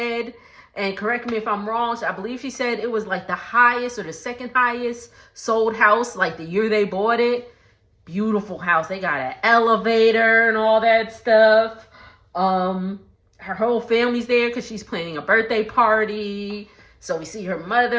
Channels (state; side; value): identical; both; correlation 1.00